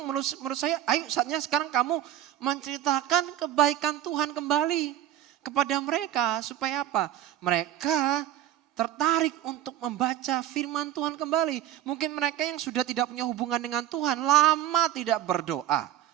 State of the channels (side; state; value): left; quieter; 11.8 dB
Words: menurut saya, ayo saatnya sekarang kamu menceritakan kebaikan Tuhan kembali kepada mereka. Supaya apa? Mereka tertarik untuk membaca firman Tuhan kembali. Mungkin mereka yang sudah tidak punya hubungan dengan Tuhan, lama tidak berdoa.